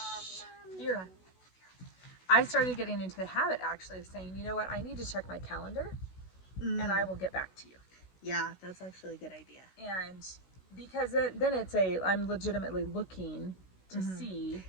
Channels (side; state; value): right; late; 16 ms